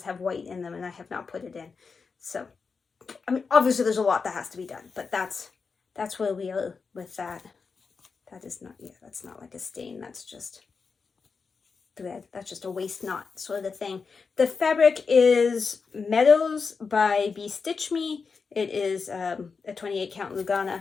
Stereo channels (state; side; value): quieter; right; 5.1 dB